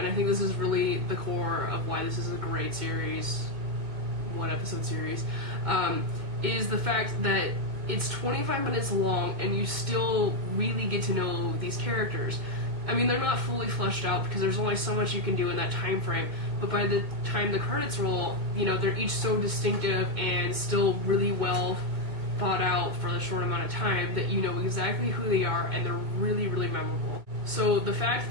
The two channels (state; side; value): late; left; 2.1 ms